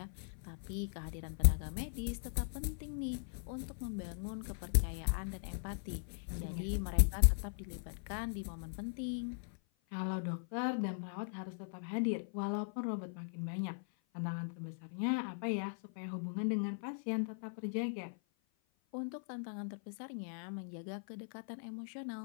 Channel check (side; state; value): right; silent; 52 dB below the other